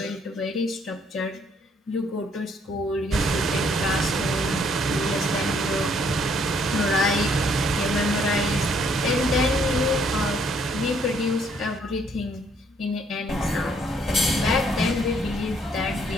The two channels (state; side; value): normal; both; correlation 0.67